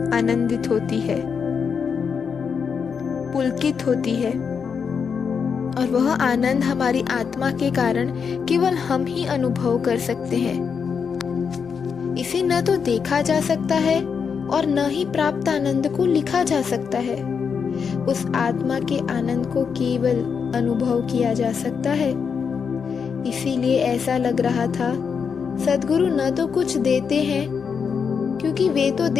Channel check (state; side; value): quieter; right; 6.3 dB